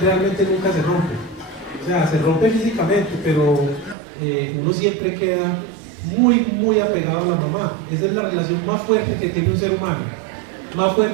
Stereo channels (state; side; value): drops out; left; at 4.0 s